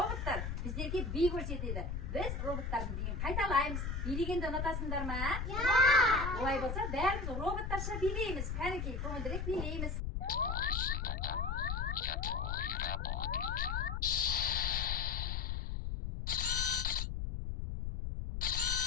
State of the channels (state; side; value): noise; left; rumble, 2 dB below the sound